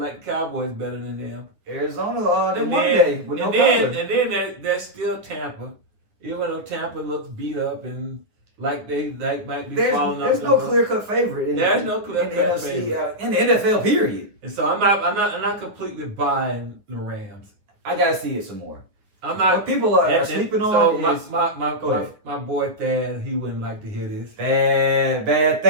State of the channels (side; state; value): left; late; 9.4 ms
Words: the Cowboys better than them. Arizona, they won day with no problem. And then there's still Tampa. Even though Tampa looks beat up and like they might be falling off. There's no clear-cut favorite. There's no clear-cut favorite in the NFL. Period. And so I'm not completely buying the Rams. I gotta see it some more. I'm not. What people are sleeping on is my boy Thad. He wouldn't like to hear this.